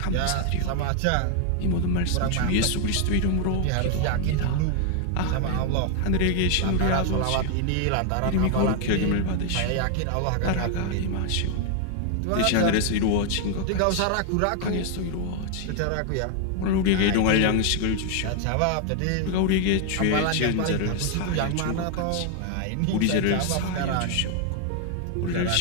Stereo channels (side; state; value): both; different; correlation 0.00